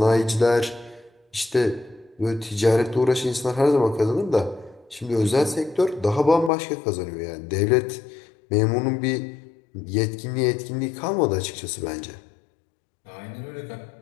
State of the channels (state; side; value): drops out; right; at 6.5 s